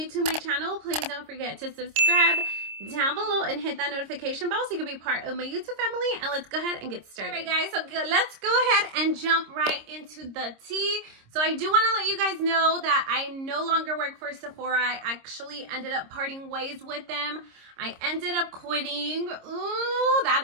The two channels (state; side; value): late; left; 26 ms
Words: to my channel, please don't forget to subscribe down below and hit that notification bell so you can be part of my YouTube family. And let's go ahead and get started. All right, guys, so let's go ahead and jump right into the tea. So I do want to let you guys know that I no longer work for Sephora. I actually ended up parting ways with them. I ended up quitting. Ooh,